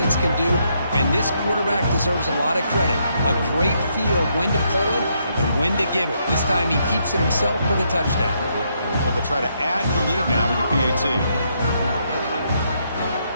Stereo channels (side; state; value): both; inverted; correlation -0.76